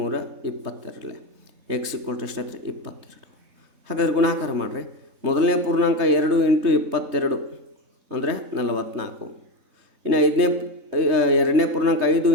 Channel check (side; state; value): left; late; 3.2 ms